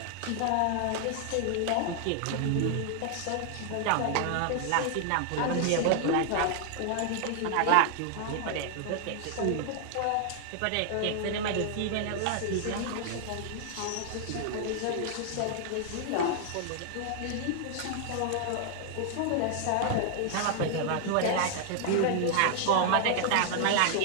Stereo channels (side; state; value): both; different; correlation 0.00